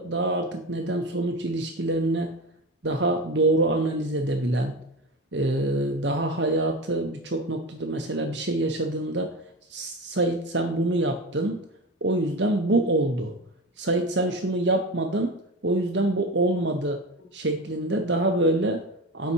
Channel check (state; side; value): normal; both; correlation 0.25